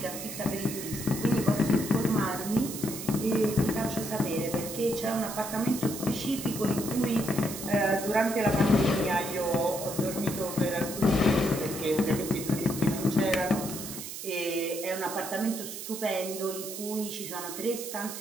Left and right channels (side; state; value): right; noise; hiss, 8 dB below the sound